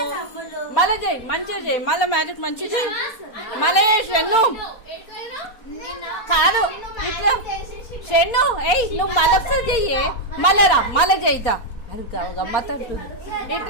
మళ్ళీ చెయ్యి, మంచిగా చెయ్యి, మళ్ళీ మ్యాజిక్ మంచిగా చెయ్యి. మళ్ళీ షెన్ను కాదు ఇట్లా షెన్ను ఏయ్ నువ్వు మళ్ళొకసారి చెయ్యి, మళ్ళీ రా మళ్ళీ చెయ్యితా. అది గమ్మత్ అంటుంది.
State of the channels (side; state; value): right; late; 4.2 ms